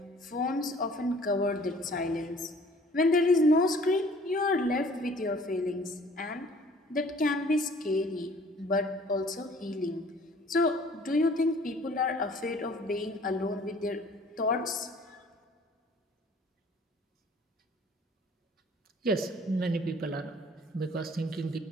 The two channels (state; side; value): normal; both; correlation 0.53